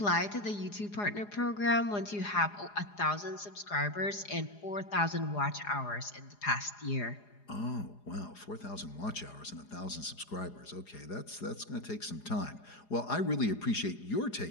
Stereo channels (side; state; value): right; late; 4.9 ms